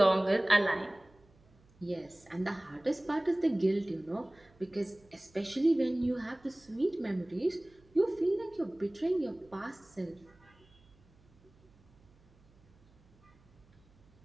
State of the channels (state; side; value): noise; right; hum, 30 dB below the sound